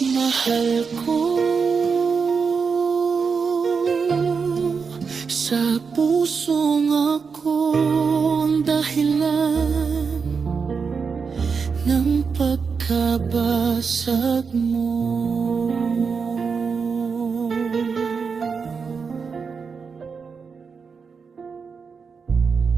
mahal ko, sa pusong akong dahilan ng pagkabasag kabasag mo.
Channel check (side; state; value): left; quieter; 5.5 dB